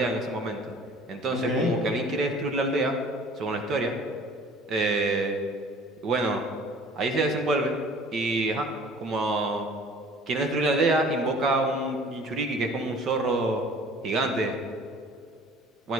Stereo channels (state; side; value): normal; both; correlation 0.49